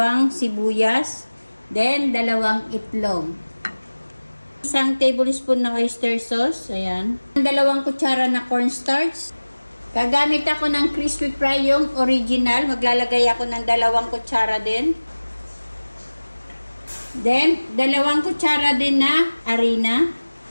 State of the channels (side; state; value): both; inverted; correlation -1.00